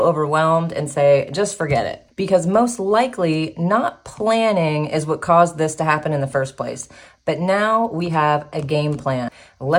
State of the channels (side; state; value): both; identical; correlation 1.00